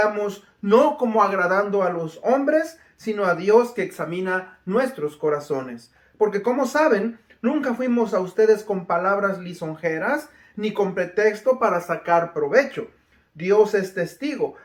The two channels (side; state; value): both; identical; correlation 1.00